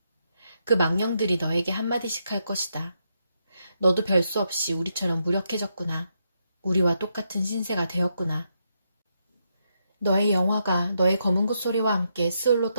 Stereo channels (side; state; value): both; inverted; correlation -0.80